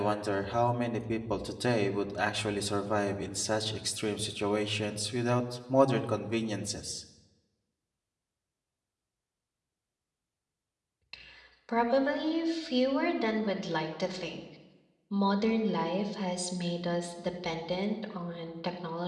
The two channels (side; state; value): both; identical; correlation 1.00